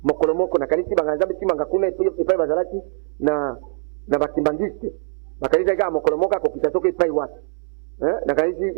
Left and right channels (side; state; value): left; silent; 64 dB below the other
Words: mokolo moko nakanisi banga nzambe timanga kuna epai bazalaki na bakimbangiste bakanisaki kaka mokolo moko akokita soki epai wapi